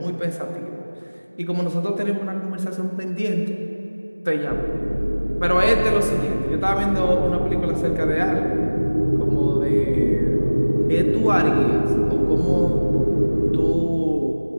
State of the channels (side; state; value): both; inverted; correlation -1.00